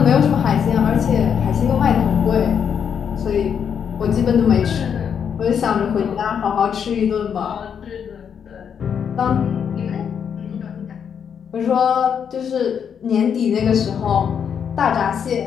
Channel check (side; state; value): right; quieter; 7.6 dB